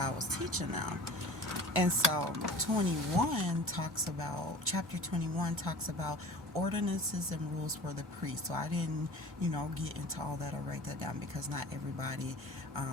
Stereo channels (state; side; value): normal; both; correlation 0.40